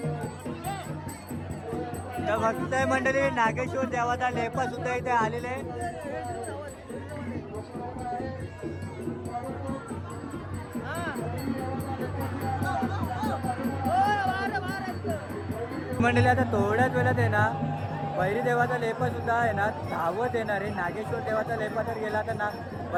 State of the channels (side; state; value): both; identical; correlation 1.00